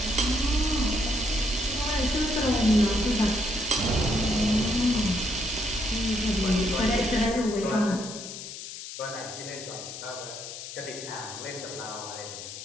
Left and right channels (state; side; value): noise; left; hiss, 10 dB below the sound